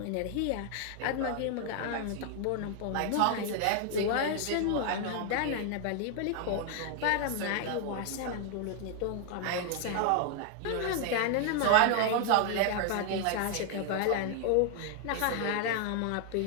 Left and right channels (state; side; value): different; both; correlation 0.00